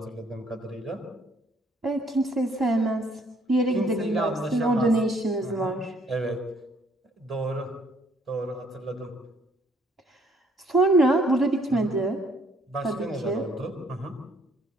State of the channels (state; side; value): normal; both; correlation 0.63